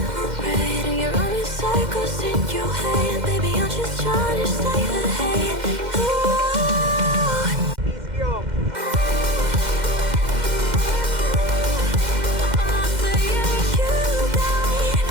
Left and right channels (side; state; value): left; late; 2.1 ms